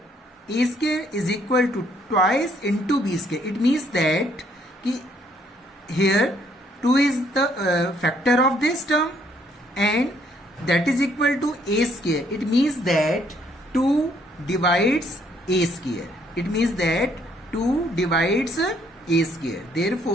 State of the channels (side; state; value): both; normal; correlation 0.67